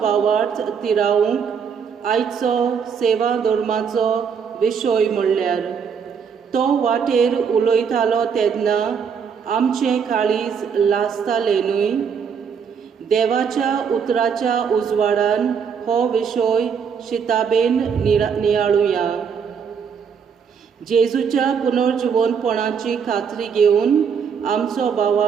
भावार्थ तिरावूंक आयचो सेवा धर्माचो विशय म्हणल्यार तो वाटेर उलयतालो तेन्ना आमचें काळीज लासतालें न्हय. देवाच्या उतराच्या उजवाडान हो विशय शिताबेन नियाळुया. जेजूच्या पुनर्जिवंतपणाची खात्री घेवन आमचो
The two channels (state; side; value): quieter; left; 6.7 dB